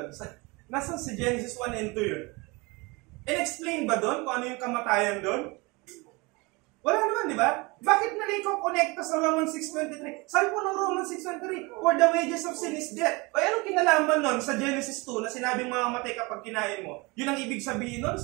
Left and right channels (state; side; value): quieter; left; 26.0 dB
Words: Nasaan si Genesis 1 and 2 yun? In-explain ba doon kung ano yung kamatayan doon? Wala naman, di ba? Bakit nalay ko connecta sa Romans 6.23? Sabi po ng Romans 6.23, for the wages of sin is death. O anong kinalaman nun sa Genesis 2 na sinabing mamamatay kapag kinain mo? Yun ang ibig sabihin nun?